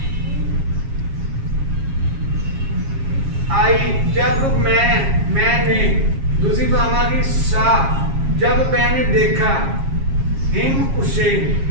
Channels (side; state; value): left; late; 7.4 ms